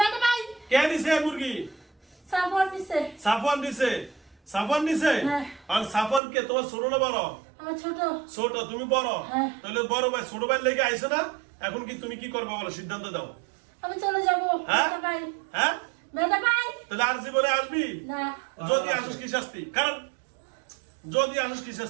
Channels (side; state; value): left; drops out; at 6.2 s